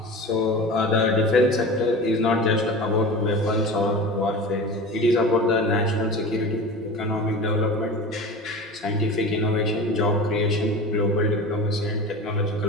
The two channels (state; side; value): normal; both; correlation 0.33